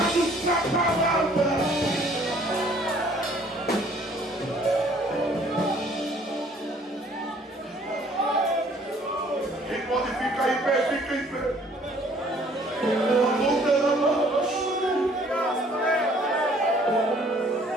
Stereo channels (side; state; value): both; normal; correlation 0.58